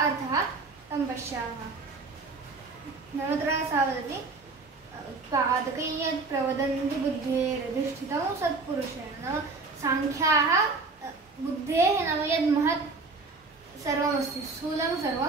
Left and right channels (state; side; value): quieter; left; 3.9 dB